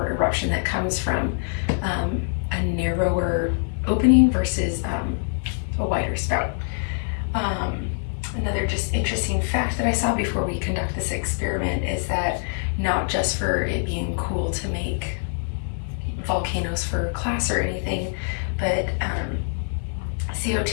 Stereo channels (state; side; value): silent; right; 58 dB below the other